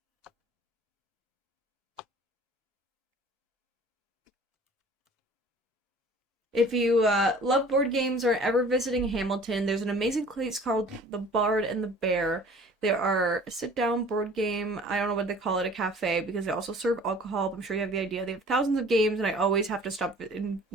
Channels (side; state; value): both; normal; correlation 0.48